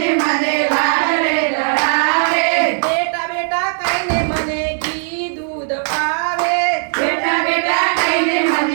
મને લાડરે લડાવે, બેટા બેટા કહીને મને ઘી દૂધ પાવે, બેટા બેટા કહીને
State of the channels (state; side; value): silent; left; 58 dB below the other